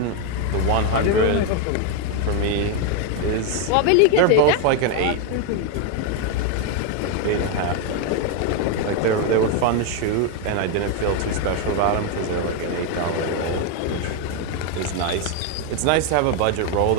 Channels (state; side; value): different; both; correlation 0.01